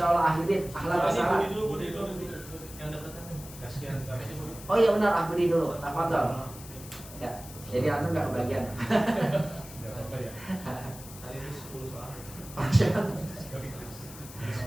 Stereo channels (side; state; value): left; noise; hiss, 15 dB below the sound